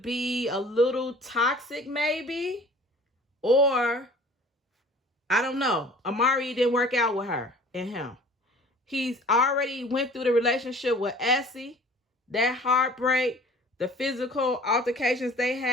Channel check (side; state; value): both; normal; correlation 0.48